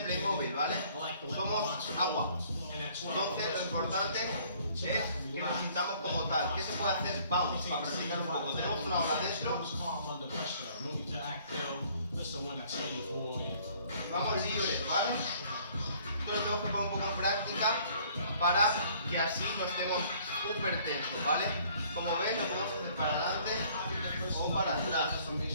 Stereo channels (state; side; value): inverted; both; correlation -0.58